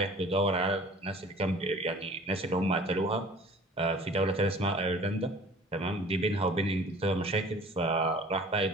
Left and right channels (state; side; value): normal; both; correlation 0.47